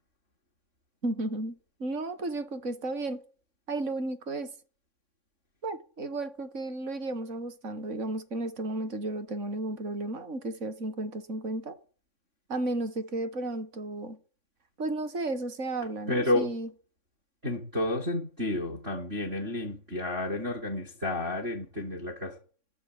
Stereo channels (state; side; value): late; left; 3.6 ms